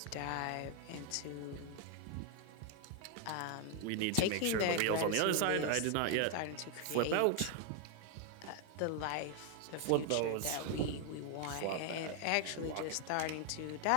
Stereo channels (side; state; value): both; different; correlation 0.01